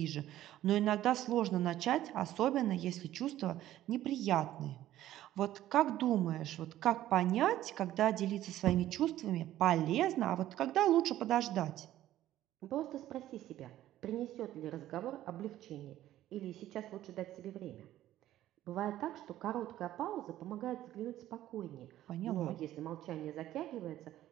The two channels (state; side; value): quieter; left; 13.5 dB